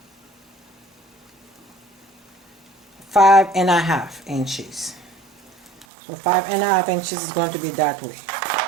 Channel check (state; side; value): drops out; left; at 5.9 s